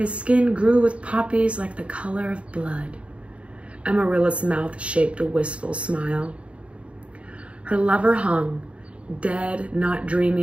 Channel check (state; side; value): late; left; 0.062 ms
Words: skin grew with poppies like the color of blood. Amarilla's mouth shaped a wistful smile. Her lover hung, dead, not